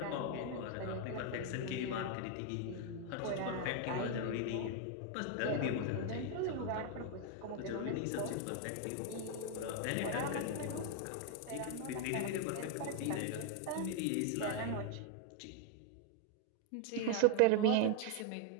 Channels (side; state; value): both; different; correlation 0.00